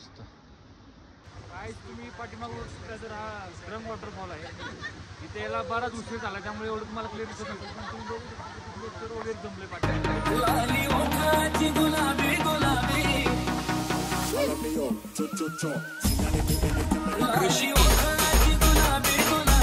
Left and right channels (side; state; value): both; identical; correlation 1.00